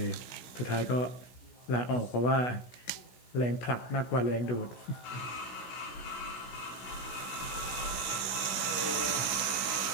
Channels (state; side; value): late; right; 16 ms